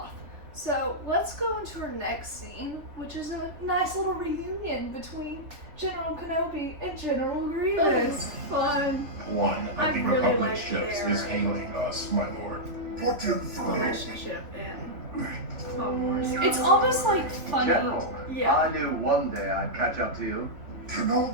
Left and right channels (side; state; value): left; late; 3.7 ms